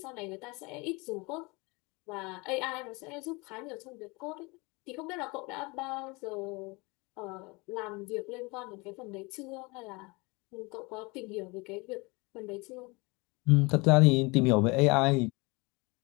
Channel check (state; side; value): quieter; right; 26.4 dB